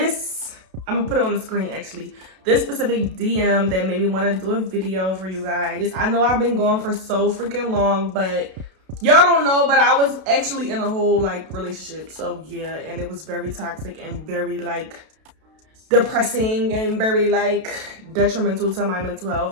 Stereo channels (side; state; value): left; late; 32 ms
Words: I'm gonna put it on the screen actually, this specific DM that made me want to do a video for you guys. I know I've been going for so freaking long, but y'all don't know, but I was actually in a whole like relationship. So yeah, and it was very toxic and very like depressing and very like detrimental to my mental